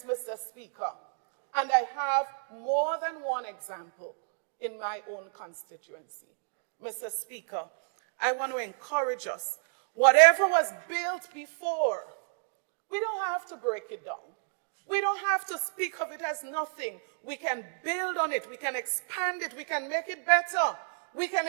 Mr. Speaker. And I have more than one example in my own constituency. Mr. Speaker, I want to encourage us, whatever was built before, we don't have to break it down. We don't have to speak of it as nothing. We can build on it, we can expand it, we can make it better. We can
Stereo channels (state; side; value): silent; left; digital silence